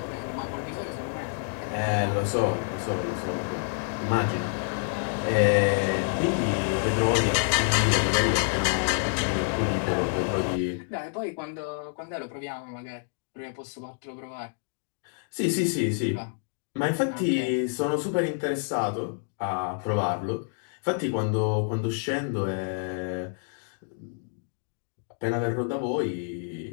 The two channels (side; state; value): right; silent; digital silence